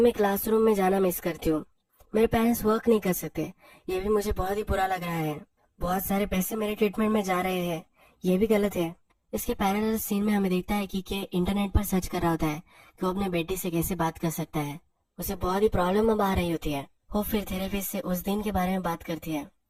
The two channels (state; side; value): identical; both; correlation 1.00